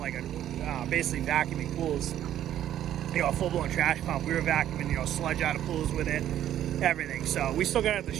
basically vacuuming pools. A full-blown trash pump. We were vacuuming, sludge out of pools with it, everything. So we still got it at the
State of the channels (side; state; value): left; quieter; 11.5 dB